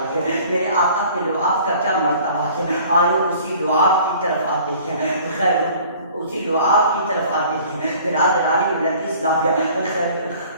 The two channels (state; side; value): inverted; both; correlation -0.50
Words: میرے آقا کے لعاب کا کیا مرتبہ ہے۔ آئے اسی لعاب کی طرف آتے ہیں، خیر اسی لعاب کی طرف آتے ہیں۔ برادران ملت اسلامیہ،